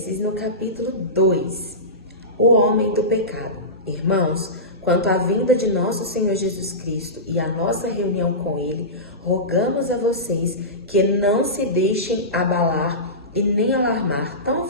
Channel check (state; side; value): normal; both; correlation -0.19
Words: no capítulo 2, o homem do pecado. Irmãos, quanto à vinda de nosso Senhor Jesus Cristo e a nossa reunião com Ele, rogamos a vocês que não se deixem abalar e nem alarmar tão